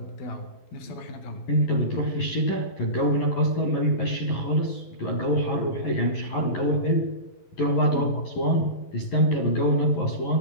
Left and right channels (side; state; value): right; late; 11 ms